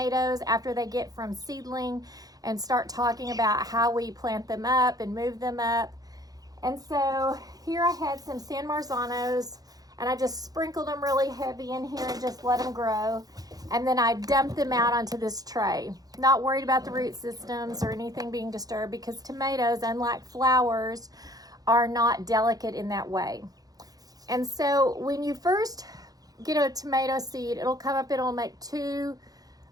after they get from seedling and start talking about how we plant them up and move them up. And so here I had some San Marzanos and I just sprinkled them really heavy in here and just let them grow. And then I dumped them out onto this tray. Not worried about the root systems or anything being disturbed because tomatoes, unlike flowers, are not delicate in that way. And so when you first get a tomato seed, it'll come up, it'll make two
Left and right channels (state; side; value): late; left; 0.18 ms